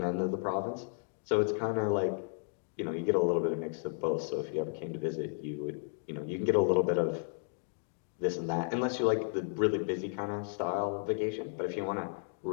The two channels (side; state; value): right; silent; 55 dB below the other